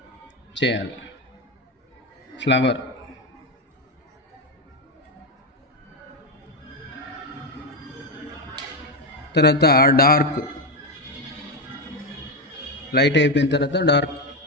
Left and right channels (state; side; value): normal; both; correlation 0.10